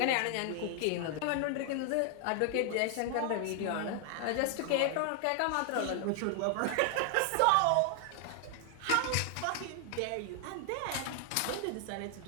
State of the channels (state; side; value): different; both; correlation 0.00